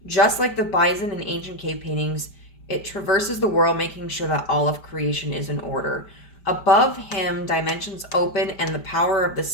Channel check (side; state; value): right; late; 5.0 ms